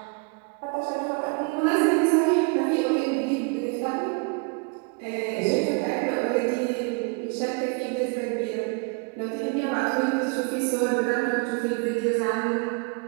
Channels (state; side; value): quieter; left; 33.4 dB